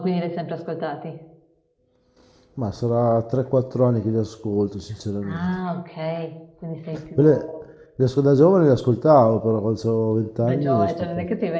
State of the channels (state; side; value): identical; both; correlation 1.00